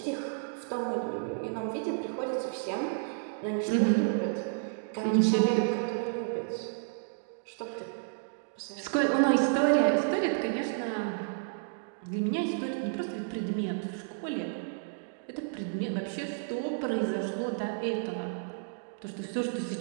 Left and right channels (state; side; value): silent; left; digital silence